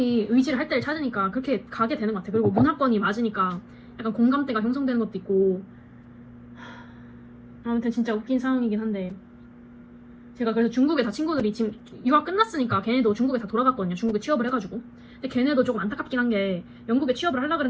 의지를 할 때를 찾으니까 그렇게 가게 되는 것 같아. 그리고 문화권이 맞으니까 약간 공감대가 형성되는 것도 있고. 아무튼 진짜 웃긴 상황이긴 한데, 제가 그래서 중국에 다 친구들이 지금 유학 끝났으니까 걔네도 중국에 다 돌아갔거든요. 중국에 취업을 해가지고. 근데 걔네도 조금 안타깝긴 한 게 영국에 취업을 하려고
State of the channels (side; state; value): both; identical; correlation 1.00